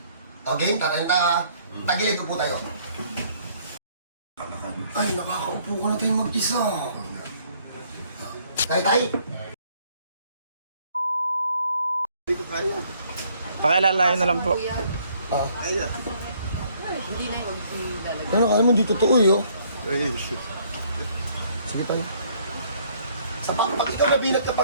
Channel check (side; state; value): both; inverted; correlation -0.64